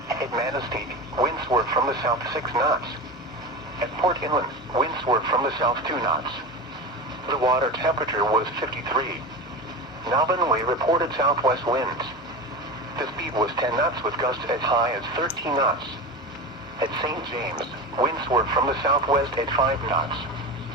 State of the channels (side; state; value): both; normal; correlation 0.25